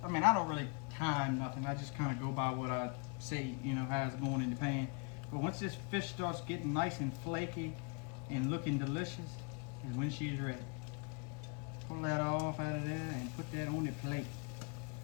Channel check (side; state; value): right; quieter; 34.9 dB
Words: I don't really time nothing. I just kind of go by what I see, how it's going in the pan. But once this fish starts getting nice and flaky and looking delicious, is when she's ready. Pull that off out of there and put that on the plate.